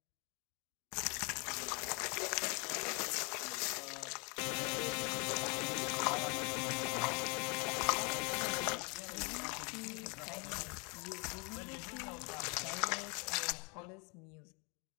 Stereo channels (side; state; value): right; quieter; 32.9 dB